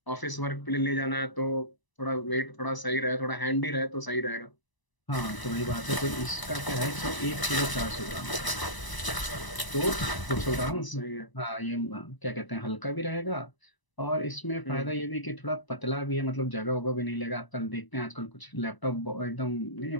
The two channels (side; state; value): right; late; 1.0 ms